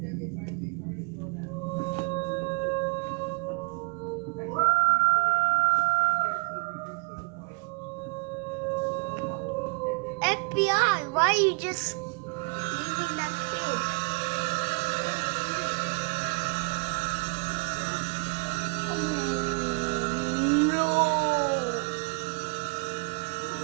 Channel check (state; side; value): quieter; left; 32.1 dB